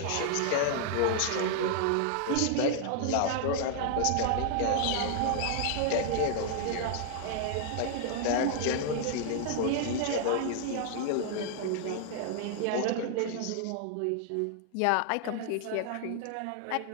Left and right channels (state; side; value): different; both; correlation -0.01